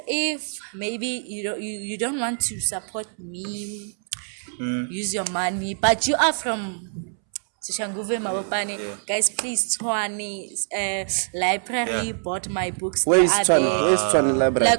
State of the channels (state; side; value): silent; left; 62 dB below the other